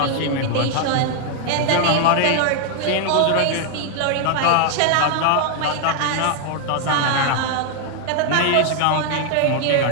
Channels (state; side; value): different; both; correlation 0.00